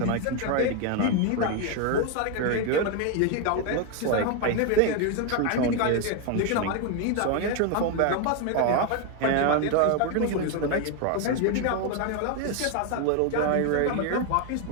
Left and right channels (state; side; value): different; both; correlation 0.01